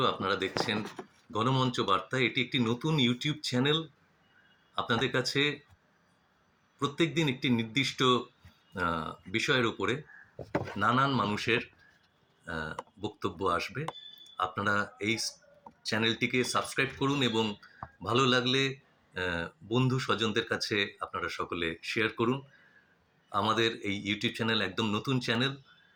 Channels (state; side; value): identical; both; correlation 1.00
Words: আপনারা দেখছেন গণমঞ্চ বার্তা। এটি একটি নতুন ইউটিউব চ্যানেল। আপনাদের কাছে প্রত্যেকদিন একটি নির্দিষ্ট বিষয়ের উপরে নানান মানুষের বক্তব্য আসবে। আপনারা এই চ্যানেলটিকে সাবস্ক্রাইব করুন এবং ভালো লাগলে বন্ধু স্বজনদের কাছে আপনারা সকলে শেয়ার করুন। আমাদের এই ইউটিউব চ্যানেল একদম নতুন চ্যানেল।